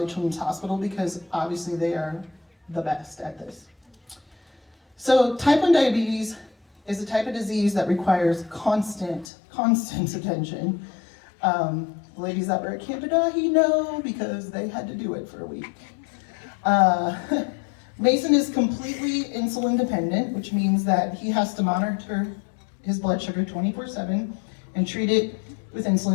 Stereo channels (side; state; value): right; drops out; at 9.2 s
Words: Children's Hospital because obviously they are the best at this. So type 1 diabetes is a type of disease that requires constant attention. The ladies that were at Camp Adahi know because they had to do it for a week. Mason is completely insulin dependent, which means that he has to monitor his blood sugar 24/7 and treat it with